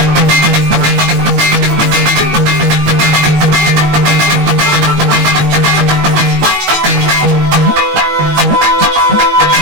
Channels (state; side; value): late; left; 19 ms